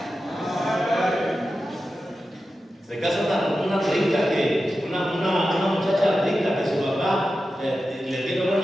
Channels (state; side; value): normal; both; correlation 0.92